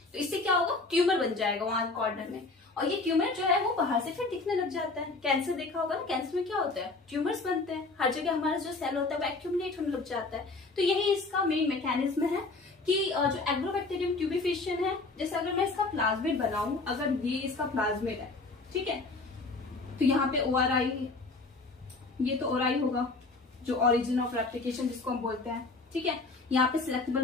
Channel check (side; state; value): right; quieter; 3.6 dB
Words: तो इससे क्या होगा, ट्यूमर बन जाएगा वहां कॉर्नर में. और ये ट्यूमर जो है वो बाहर से फिर दिखने लग जाता है. कैंसर देखा होगा ना, कैंसर में क्या होता है, ट्यूमर्स बनते हैं. हर जगह हमारा जो सेल होता है वो एक्यूमुलेट होने लग जाता है. तो यही इसका मेन मैकेनिज्म है कि जो एग्रोबैक्टीरियम ट्यूबिफिशियन है, जैसे अगर मैं इसका प्लाज्मिड बनाऊं, अगर ये इसका प्लाज्मिड है, ठीक है, तो यहाँ पे ORI, ये तो ORI होगा जो ओरिजिन ऑफ रेप्लिकेशन जिसको हम बोलते हैं. ठीक है, यहाँ पे सिलेक्टेबल